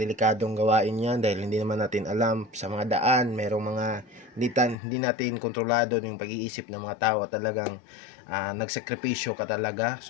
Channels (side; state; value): right; drops out; at 4.8 s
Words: gawain yan dahil hindi naman natin alam sa mga daan, merong mga hindi natin kontrolado yung pag-iisip ng mga tao. Talagang nagsakripisyo ka talaga.